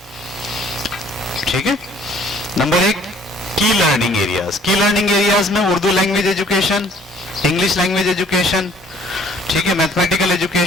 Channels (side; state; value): both; normal; correlation 0.57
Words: ठीक है। नंबर 1 की लर्निंग एरियाज। की लर्निंग एरियाज में Urdu language education, English language education, ठीक है, mathematical